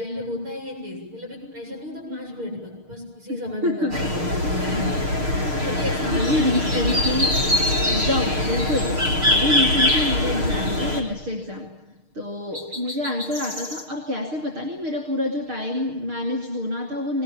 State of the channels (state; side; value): late; left; 6.5 ms